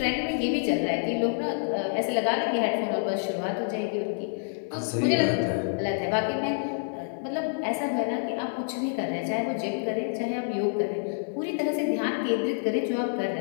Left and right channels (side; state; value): right; silent; digital silence